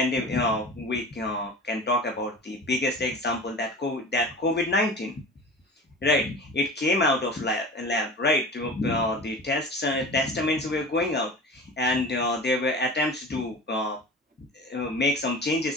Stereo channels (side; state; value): both; normal; correlation 0.36